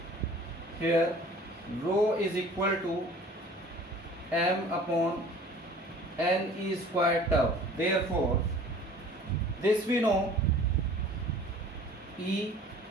here rho is equal to M upon n e squared tau. Therefore this we know E,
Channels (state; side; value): normal; both; correlation 0.47